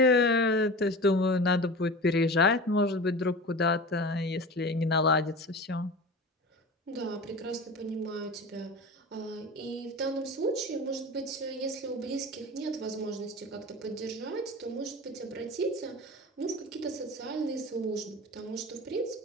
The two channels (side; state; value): both; normal; correlation 0.33